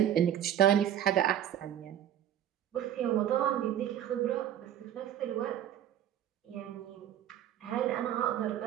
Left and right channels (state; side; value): quieter; left; 10.8 dB